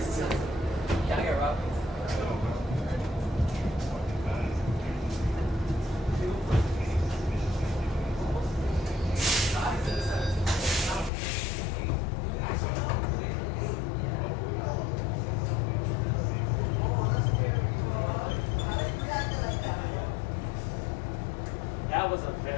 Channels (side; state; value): right; drops out; at 11.1 s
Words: Can I get Rob? That was a